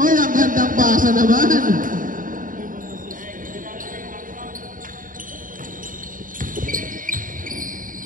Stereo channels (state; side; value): late; left; 0.39 ms